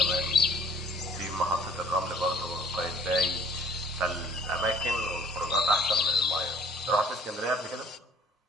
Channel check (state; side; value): normal; both; correlation 0.54